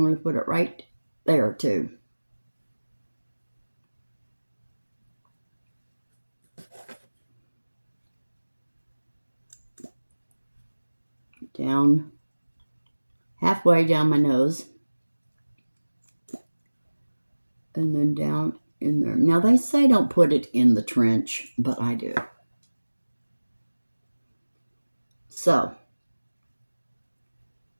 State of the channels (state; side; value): inverted; both; correlation -1.00